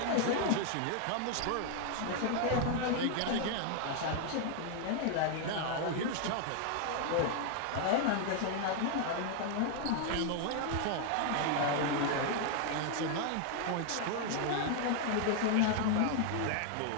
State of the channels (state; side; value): different; both; correlation 0.00